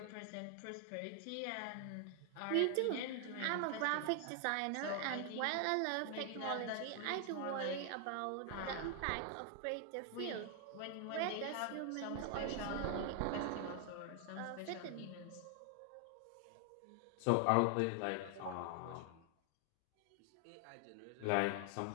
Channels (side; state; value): both; different; correlation 0.00